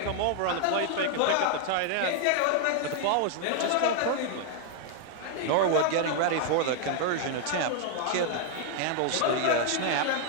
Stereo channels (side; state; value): both; different; correlation 0.00